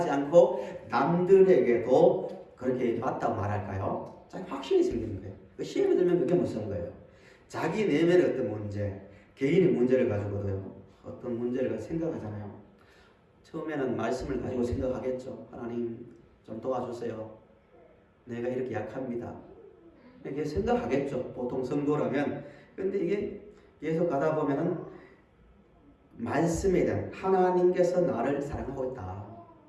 않고 남들에게도 그렇게 맞다고 말할까요? 자기 확신이 생기는 거예요. 시험에 들면 그게 무서운 거예요. 자기 내면의 어떤 문제, 개인의 문제를 가지고도요. 어떤 문제를 생각하잖아요. 처음에는 말씀을 가지고 생각하겠죠. 하나님 좀 도와주세요. 내가 이렇게 약합니다. 이렇게 생각하겠죠. 보통 성도라면. 근데 이게 계속 가다 보면은 말씀에 대한 하나님께서 나를 사랑하고 있다.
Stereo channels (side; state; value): both; identical; correlation 1.00